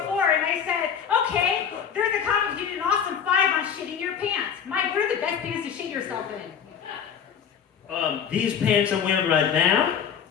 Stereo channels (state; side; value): quieter; right; 7.8 dB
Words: and I said, okay, there's a comic who did an awesome 5 on shitting your pants. Mike, what are the best pants to shit yourself in? These pants I'm wearing right now,